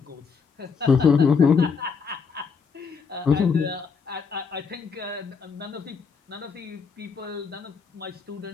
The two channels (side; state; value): right; quieter; 5.6 dB